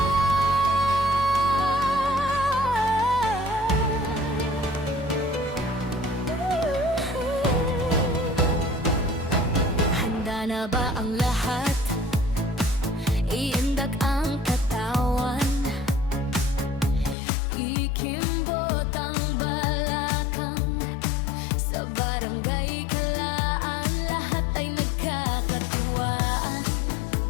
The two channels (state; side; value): drops out; right; at 17.2 s